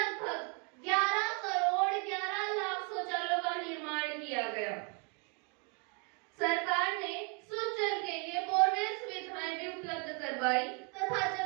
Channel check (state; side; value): quieter; left; 35.2 dB